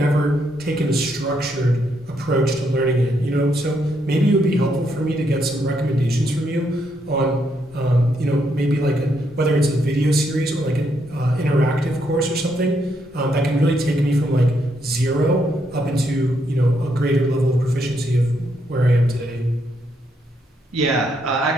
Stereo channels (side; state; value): both; normal; correlation 0.76